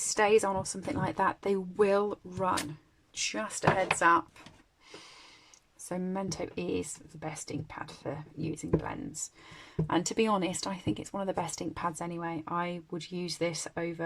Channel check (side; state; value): both; identical; correlation 1.00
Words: or something like that, they will run. Just a heads up. So Memento is the best ink pad for using blends. And to be honest, I think it's one of the best ink pads anyway. I would use this